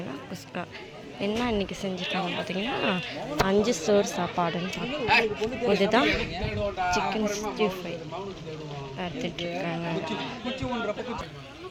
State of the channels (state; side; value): identical; both; correlation 1.00